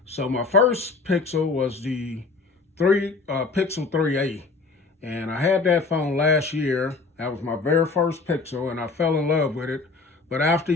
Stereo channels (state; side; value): quieter; right; 4.1 dB